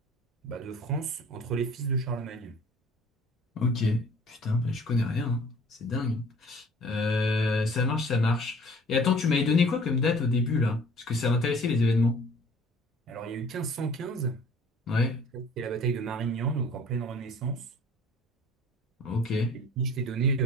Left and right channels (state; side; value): normal; both; correlation 0.50